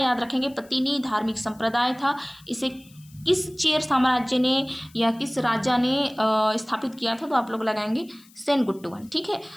रखेंगे, पतिनी धार्मिक संप्रदाय था। इसे किस चेर साम्राज्य ने या किस राजा ने स्थापित किया था, तो आप लोग लगाएंगे सेनगुट्टुवन, ठीक है।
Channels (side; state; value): left; noise; hiss, 27 dB below the sound